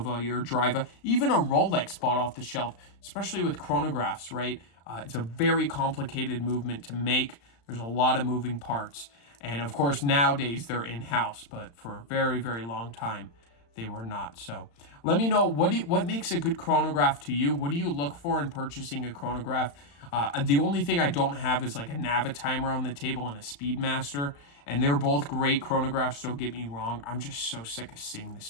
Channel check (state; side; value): late; right; 35 ms